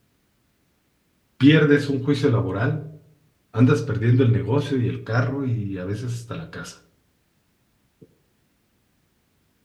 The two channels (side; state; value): both; identical; correlation 1.00